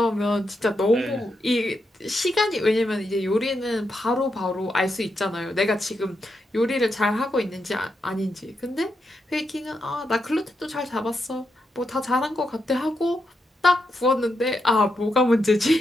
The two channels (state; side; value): normal; both; correlation 0.84